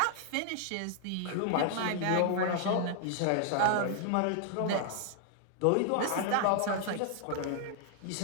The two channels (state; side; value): different; both; correlation 0.00